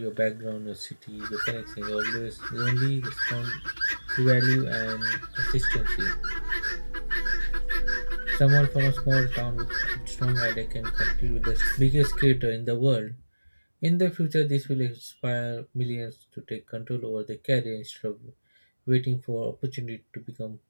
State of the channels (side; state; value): both; inverted; correlation -1.00